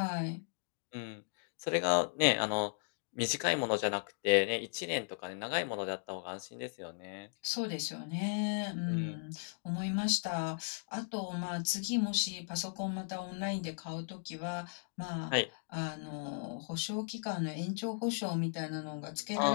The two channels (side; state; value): right; silent; digital silence